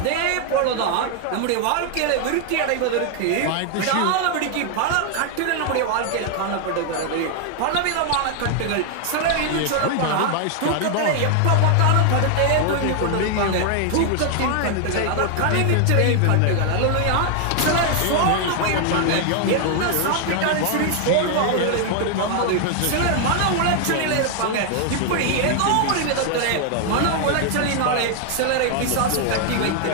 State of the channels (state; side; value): different; both; correlation 0.00